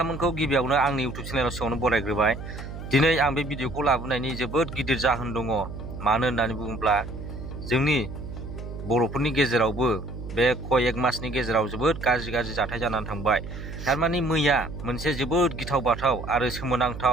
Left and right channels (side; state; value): right; noise; hum, 10 dB below the sound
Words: गिबियावनो आंनि इउटुब चेनेलाव सिगाङावनो बरायग्रोबाय। दिनै आं बे भिडिअखौ लाबोनायनि जोबोद गिदिर जाहोन दङ। मानो होननानै बुङोब्ला जोंनि बर'फोरनि गेजेरावबो बे कयेक मासनि गेजेराव जोबोद गाज्रि जाथाय जानानै थांबाय। थारमाने मैया मोनसे जोबोद गिथाव बाथाव आरो